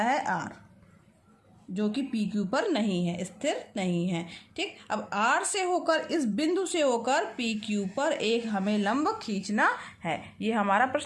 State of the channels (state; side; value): identical; both; correlation 1.00